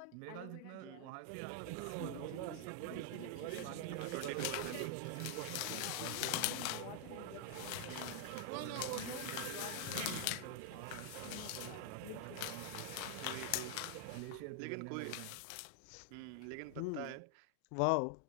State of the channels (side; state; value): both; different; correlation 0.00